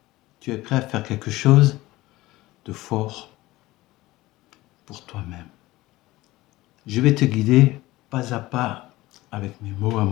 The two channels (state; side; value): quieter; right; 18.4 dB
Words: Tu es prêt à faire quelque chose de fort pour toi-même. Je vais te guider pas à pas avec mes mots à